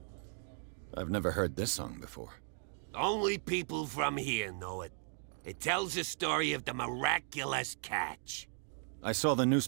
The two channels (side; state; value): left; silent; 53 dB below the other